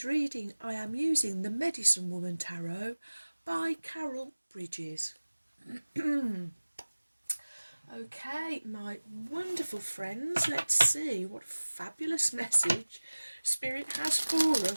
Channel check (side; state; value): both; inverted; correlation -1.00